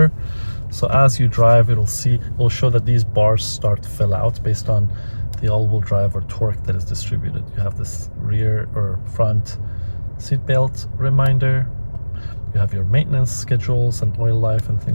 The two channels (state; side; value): inverted; both; correlation -1.00